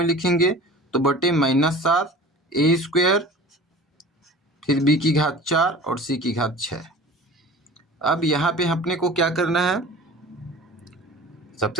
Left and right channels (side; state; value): both; normal; correlation 0.41